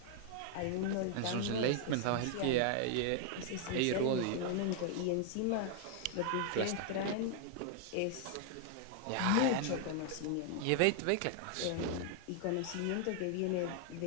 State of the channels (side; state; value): both; different; correlation 0.00